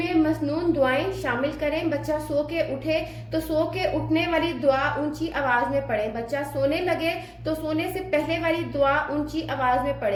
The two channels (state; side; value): identical; both; correlation 1.00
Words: मसनून दुआएं शामिल करें। बच्चा सो के उठे तो सो के उठने वाली दुआ ऊंची आवाज में पढ़े। बच्चा सोने लगे तो सोने से पहले वाली दुआ ऊंची आवाज में